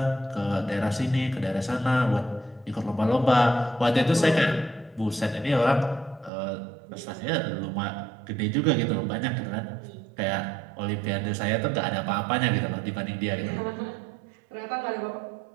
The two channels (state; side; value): drops out; left; at 6.3 s